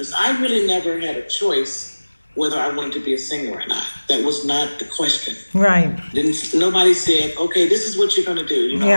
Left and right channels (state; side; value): inverted; both; correlation -1.00